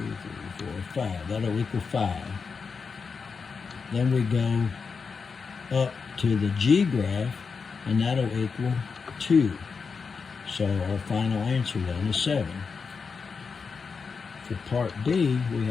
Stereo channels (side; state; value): right; quieter; 5.3 dB